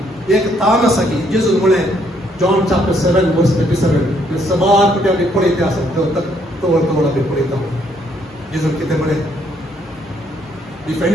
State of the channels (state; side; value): normal; both; correlation 0.69